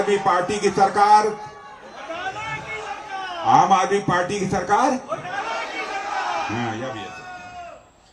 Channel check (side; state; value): both; identical; correlation 1.00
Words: पार्टी की सरकार, आम आदमी पार्टी की सरकार। हाँ, यह भी है।